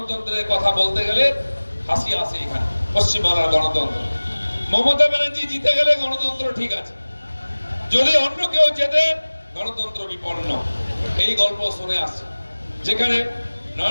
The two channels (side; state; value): both; inverted; correlation -1.00